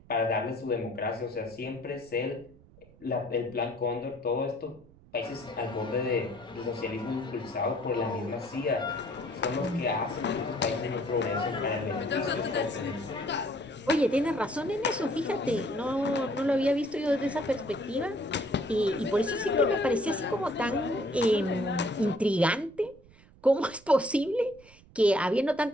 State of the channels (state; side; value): noise; right; rumble, 25 dB below the sound